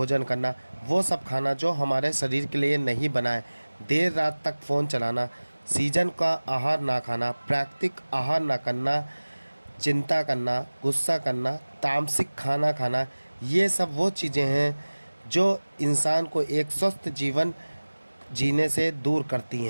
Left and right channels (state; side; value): inverted; both; correlation -1.00